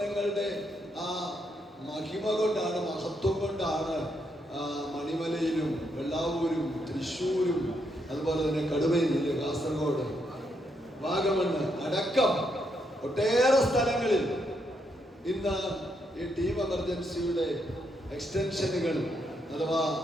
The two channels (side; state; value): both; normal; correlation 0.78